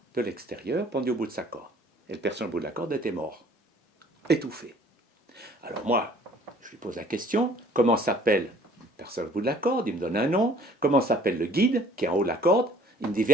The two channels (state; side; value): normal; both; correlation 0.53